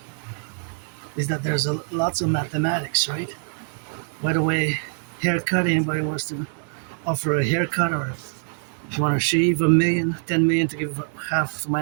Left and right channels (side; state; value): left; silent; 59 dB below the other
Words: is that there's lots of mathematics, right? By the way, haircut, anybody wants to offer a haircut, or if you want to shave 1,000,000, 10 million to give half to my